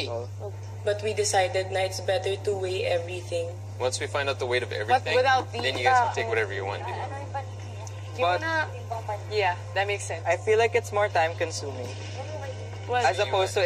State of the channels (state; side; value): identical; both; correlation 1.00